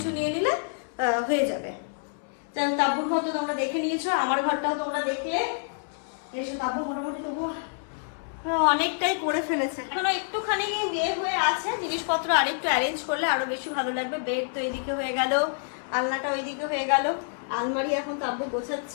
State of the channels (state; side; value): silent; right; 60 dB below the other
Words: নিয়ে নিলে হয়ে যাবে। তাব্বুর ঘর তো তোমরা দেখে নিয়েছো, আমার ঘরটাও তোমরা দেখলে। এসো, তাব্বু মোটামুটি তবু অনেকটাই করে ফেলেছে, এখনো একটুখানি বিয়ে হয়ে আছে। জিনিসপত্র আরেকটু অ্যারেঞ্জ করলে আরো বেশি ভালো লাগবে। বেড তো এইদিকে হয়ে গেল, আলনাটা ওইদিকে হয়ে গেল, আলমারি এখন তাব্বু